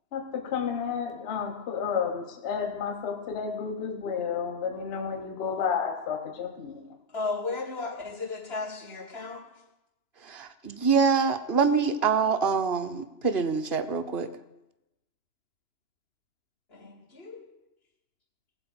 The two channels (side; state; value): right; late; 2.9 ms